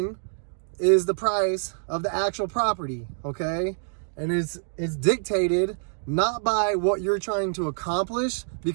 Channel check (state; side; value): silent; left; digital silence